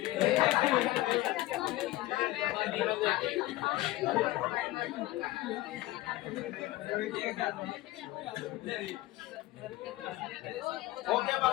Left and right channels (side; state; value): right; quieter; 17.3 dB